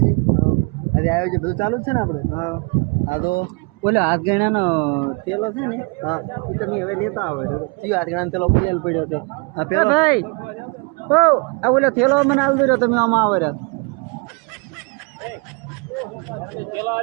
ગઈ. આજે આવ્યો છે બધું ચાલુ જ છે ને આપણે. હા તો બોલે હાથ ગણાનો થેલો છે ને, હા એ તમે હવે લેતા આવો. જીવ હાથ ગણાનો થેલો લેલ પડ્યો તો હા પેલો ભાઈ. ઓ આ બોલે થેલો મને હાલ દો તમે આમાં આવો રહ્યા.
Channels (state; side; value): quieter; left; 32.4 dB